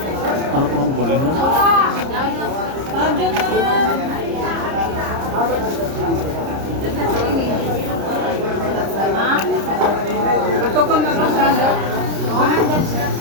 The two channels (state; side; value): late; left; 30 ms